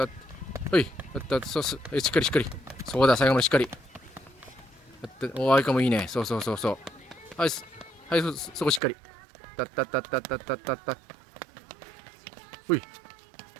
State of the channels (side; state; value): left; drops out; at 8.8 s